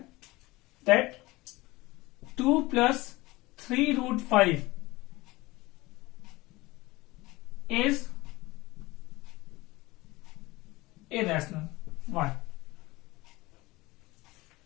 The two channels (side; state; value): right; quieter; 20.6 dB